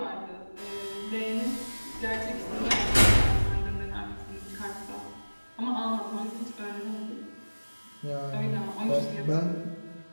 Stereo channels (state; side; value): inverted; both; correlation -1.00